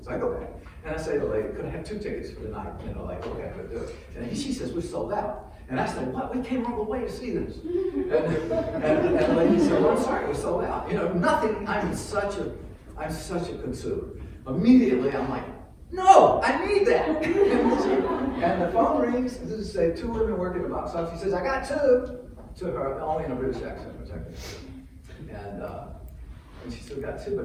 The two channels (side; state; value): both; identical; correlation 1.00